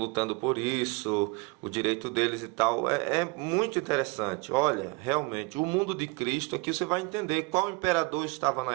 por isso, o direito deles e tal. É muito interessante. Olha, realmente, o mundo de Cristo, aqui você vai entender qual imperador estava na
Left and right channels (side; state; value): left; quieter; 27.1 dB